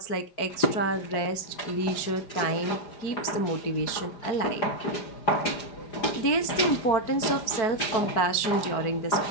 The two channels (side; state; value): right; late; 4.6 ms